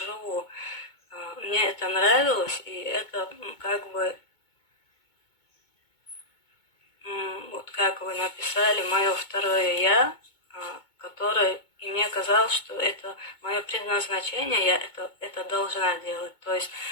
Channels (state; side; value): late; right; 2.2 ms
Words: Мне это нравилось, и это как бы, вот как вы написали, мое второе я, которое, и мне казалось, что это мое предназначение, я это должна делать. То есть